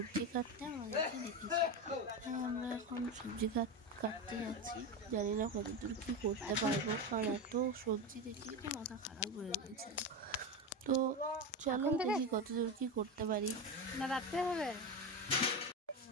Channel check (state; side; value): normal; both; correlation 0.18